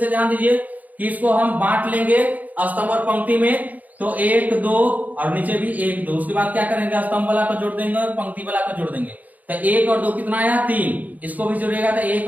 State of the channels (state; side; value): late; left; 0.079 ms